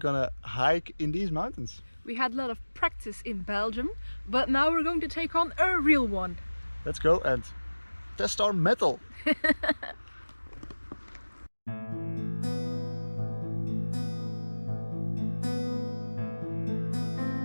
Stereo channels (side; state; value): both; inverted; correlation -1.00